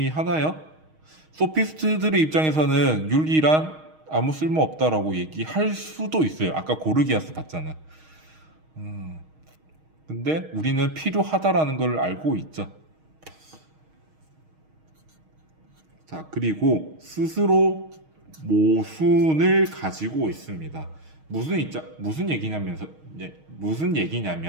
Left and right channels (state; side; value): late; left; 6.4 ms